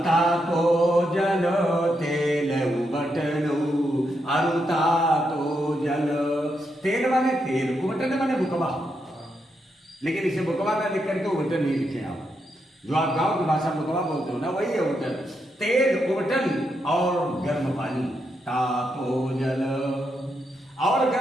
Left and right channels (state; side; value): normal; both; correlation 0.82